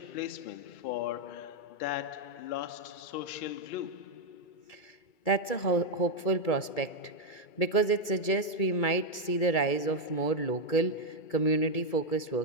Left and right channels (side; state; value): right; late; 1.8 ms